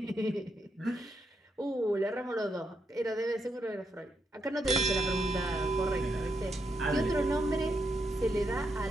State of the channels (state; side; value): normal; both; correlation 0.81